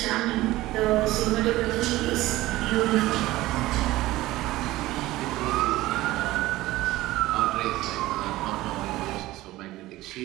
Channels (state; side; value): quieter; left; 17.4 dB